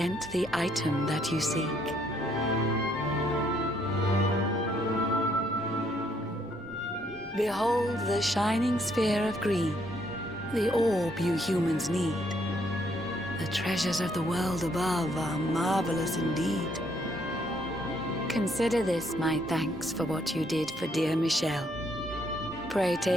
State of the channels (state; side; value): normal; both; correlation 0.70